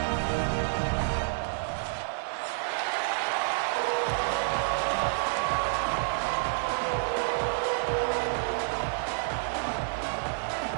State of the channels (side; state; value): left; silent; digital silence